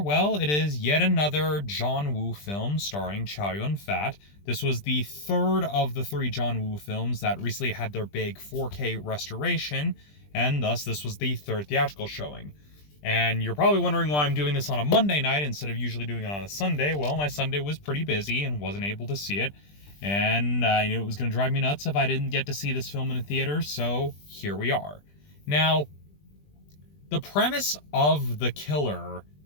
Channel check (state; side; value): late; right; 20 ms